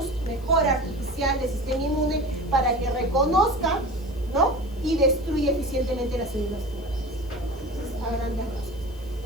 mejora artificial del sistema inmune para que reconozca, ¿no? Y destruya eficientemente las células tumorales. A grandes rasgos,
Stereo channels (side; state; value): left; noise; hiss, 26 dB below the sound